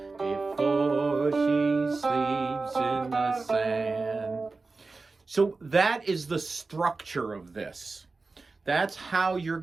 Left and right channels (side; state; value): left; quieter; 3.8 dB